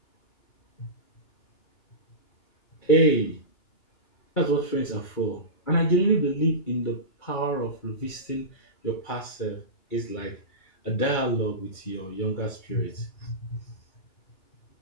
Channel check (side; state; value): right; late; 2.9 ms